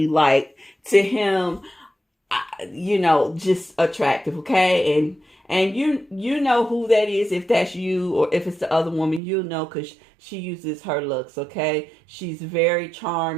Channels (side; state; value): left; drops out; at 9.2 s